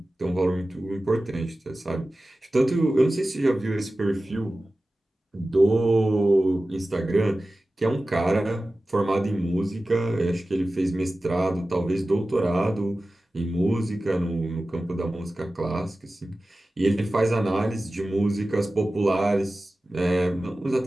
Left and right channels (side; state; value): both; normal; correlation 0.95